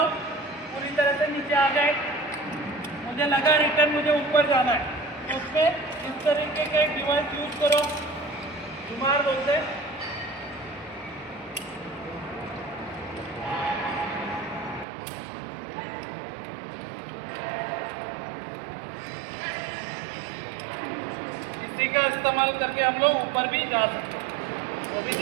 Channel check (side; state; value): left; drops out; at 14.9 s